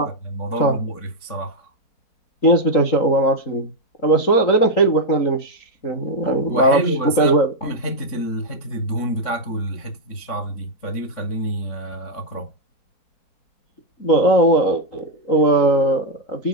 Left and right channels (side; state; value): right; late; 3.6 ms